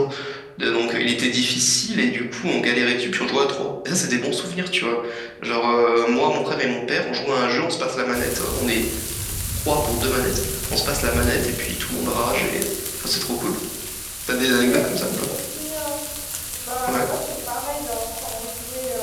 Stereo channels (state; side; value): identical; both; correlation 1.00